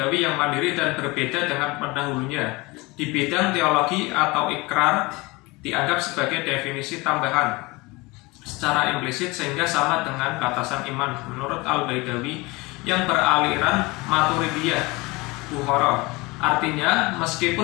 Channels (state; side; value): quieter; right; 23.9 dB